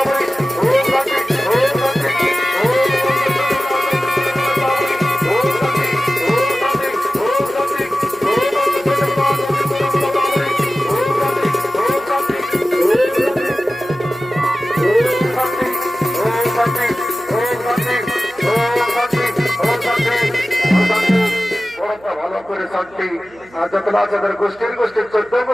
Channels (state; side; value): noise; right; hum, 26 dB below the sound